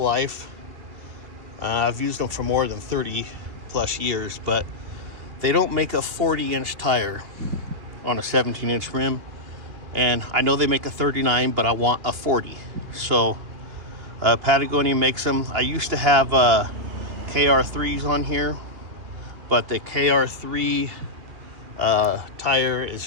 life. I've used them for more than 30 plus years, but they don't make a 40-inch tire on a 17-inch rim. And I know they make a 39, but I want a 40. So Patagonia makes them. I used to have KR3s on here, but the KR3 tire is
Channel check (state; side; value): late; left; 2.9 ms